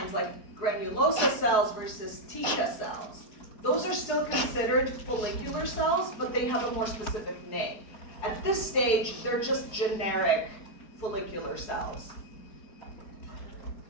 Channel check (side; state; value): right; late; 4.8 ms